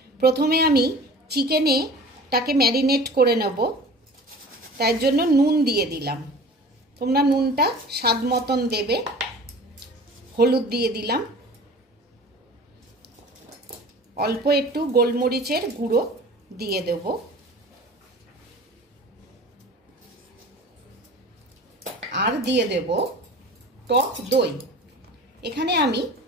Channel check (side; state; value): both; normal; correlation 0.42